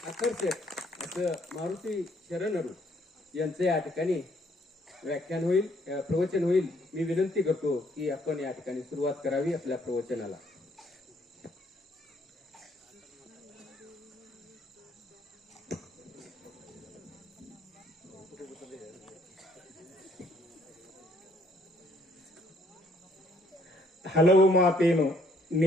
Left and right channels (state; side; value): normal; both; correlation 0.66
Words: आकर्षक असं मारुती शरणरू यांचे या ठिकाणी व्याख्यान होईल, प्रवचन होईल. मी विनंती करतो की आपण या ठिकाणी सुरुवात करावी आपल्या प्रवचनाला. ಹಲವು ಮಾತೇನು